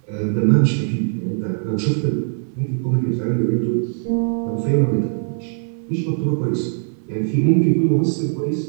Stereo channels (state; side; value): silent; left; digital silence